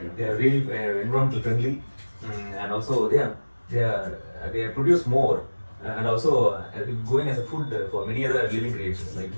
They are really environmental friendly, and also they produce more, and also going as a food for many other living creatures like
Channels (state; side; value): inverted; both; correlation -1.00